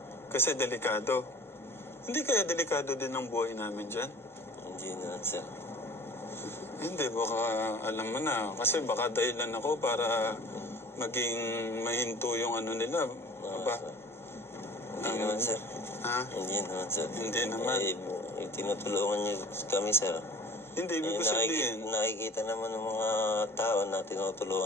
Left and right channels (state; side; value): normal; both; correlation 0.44